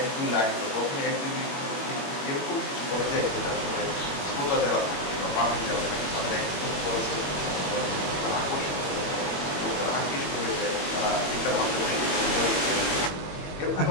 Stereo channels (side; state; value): right; late; 21 ms